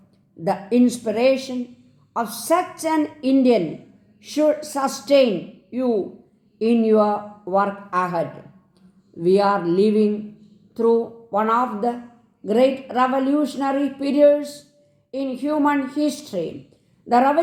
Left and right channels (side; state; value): both; identical; correlation 1.00